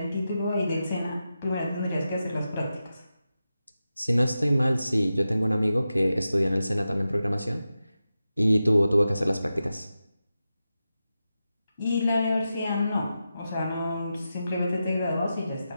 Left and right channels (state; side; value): inverted; both; correlation -0.91